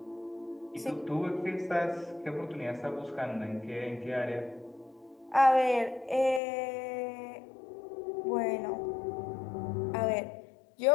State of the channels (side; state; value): right; drops out; at 6.4 s